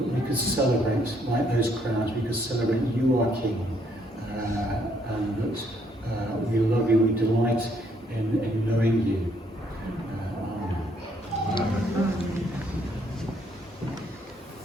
could celebrate like those crowds. We could celebrate you are King, and that we love you. We delight in knowing you.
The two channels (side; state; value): both; normal; correlation 0.69